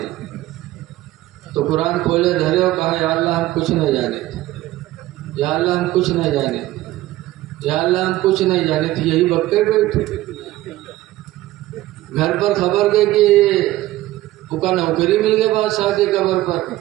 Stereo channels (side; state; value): left; quieter; 16.4 dB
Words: تو قرآن کھولے دھرے اور کہا یا اللہ ہم کچھ نہیں جانے تھے، یا اللہ ہم کچھ نہیں جانے تھے، یا اللہ ہم کچھ نہیں جانے تھے، یہی بکے بیٹھے گھر پر خبر دے کہ وہ کا نوکری مل گیا بادشاہ کے قبر پر،